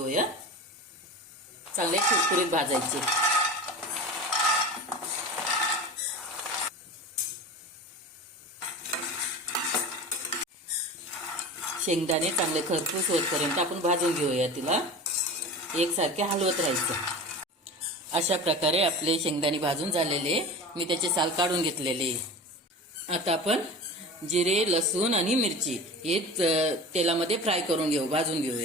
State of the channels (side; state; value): both; normal; correlation 0.33